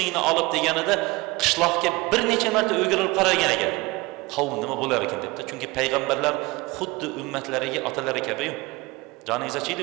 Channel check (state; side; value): quieter; left; 22.8 dB